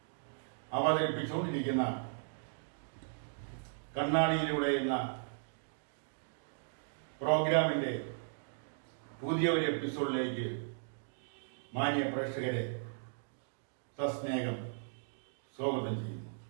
അവതരിപ്പിച്ചുകൊണ്ടിരിക്കുന്ന കണ്ണാടിയിലൂടെ എന്ന പ്രോഗ്രാമിന്റെ പുതിയ ഒരു എപ്പിസോഡിലേക്ക് മാന്യ പ്രേക്ഷകരെ സസ്നേഹം സ്വാഗതം ചെയ്യുന്നു.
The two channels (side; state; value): left; silent; digital silence